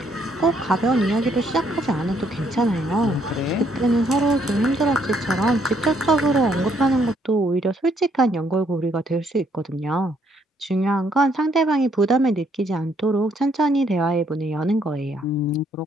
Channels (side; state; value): both; normal; correlation 0.70